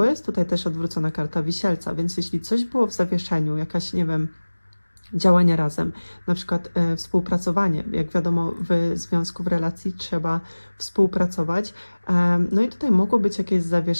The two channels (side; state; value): both; inverted; correlation -1.00